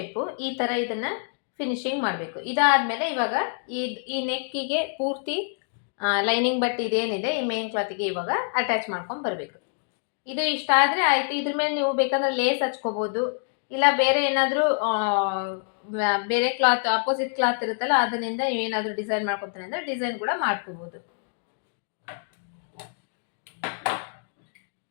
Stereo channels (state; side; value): silent; right; 61 dB below the other